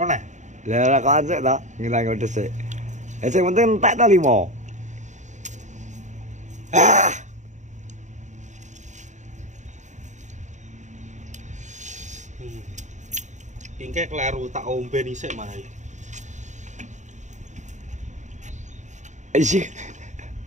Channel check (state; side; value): late; left; 0.35 ms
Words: Lah rokokan sih to, ngilang udes sih. Sing penting entek ta 5. Ingke kleru tak ombe dhisik malah. Isi.